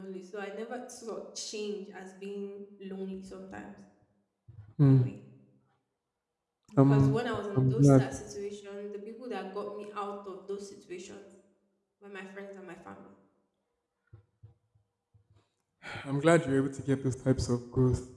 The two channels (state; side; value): identical; both; correlation 1.00